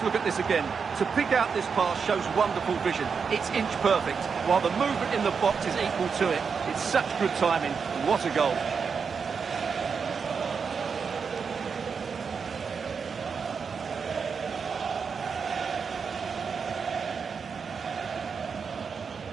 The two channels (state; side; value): quieter; left; 5.8 dB